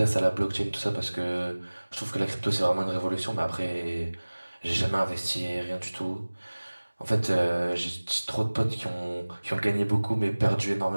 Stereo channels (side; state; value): both; inverted; correlation -1.00